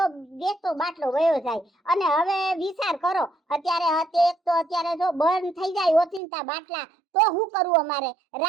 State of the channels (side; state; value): left; drops out; at 6.2 s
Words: બેસતો બાટલો વયો જાય. અને હવે વિચાર કરો, અત્યારે જો બંધ થઈ જાય ઓચિંતા બાટલા, તો શું કરવું અમારે?